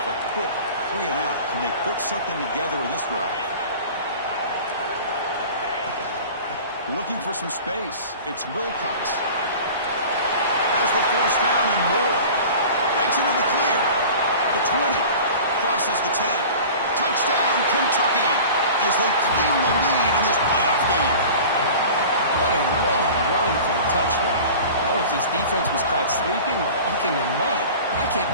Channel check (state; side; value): inverted; both; correlation -0.39